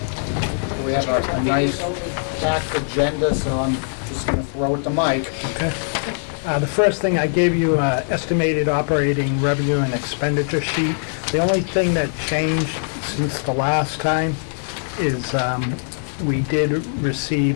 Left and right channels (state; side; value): silent; right; digital silence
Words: We have a nice packed agenda, so I'm just going to throw it to Mike. Okay. The first thing, I gave you estimated operating revenue and expenditure sheet. The only thing that changed since the last time is we did